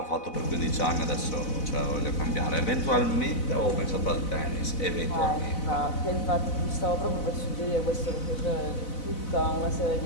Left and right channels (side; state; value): right; late; 4.0 ms